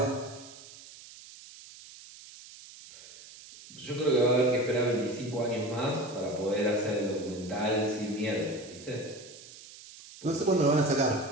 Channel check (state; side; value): noise; right; hiss, 18 dB below the sound